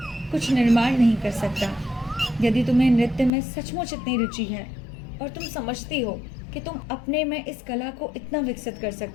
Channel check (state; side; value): drops out; right; at 3.3 s